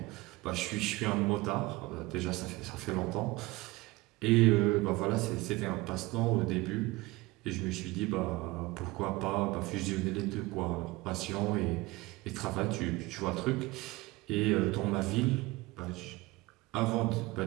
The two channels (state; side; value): quieter; left; 21.3 dB